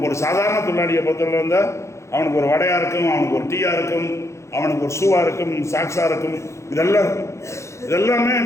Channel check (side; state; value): right; late; 0.14 ms